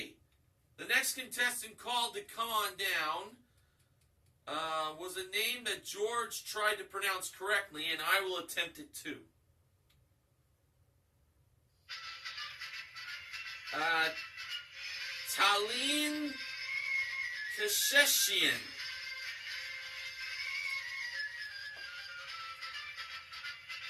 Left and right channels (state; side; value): identical; both; correlation 1.00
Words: the next contestant called to come on down was a name that George tried to pronounce correctly, and I will attempt it too. Talene Kasheshian.